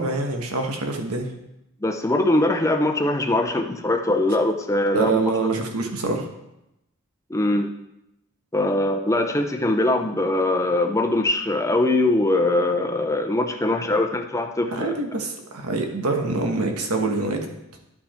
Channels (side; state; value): both; normal; correlation 0.50